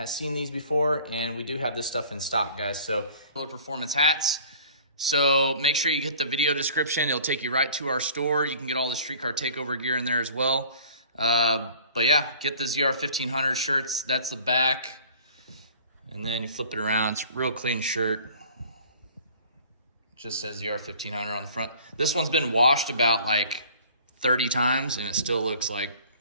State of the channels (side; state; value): both; inverted; correlation -0.48